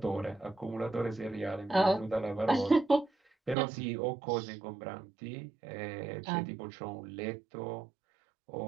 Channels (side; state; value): left; drops out; at 3.6 s